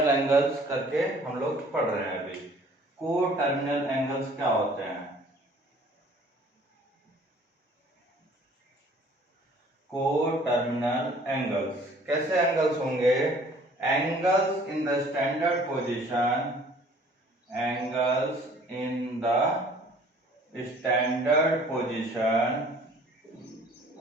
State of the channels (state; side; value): normal; both; correlation 0.54